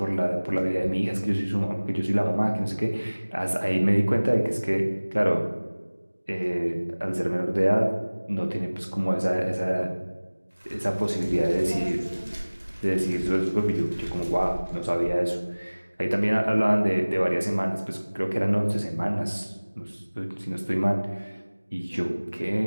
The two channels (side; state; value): both; inverted; correlation -1.00